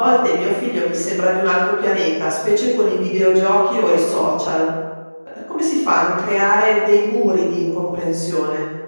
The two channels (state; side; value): inverted; both; correlation -1.00